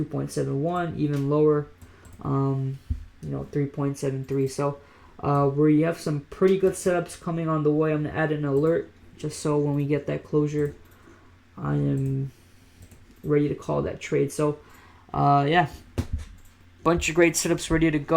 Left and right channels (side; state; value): both; identical; correlation 1.00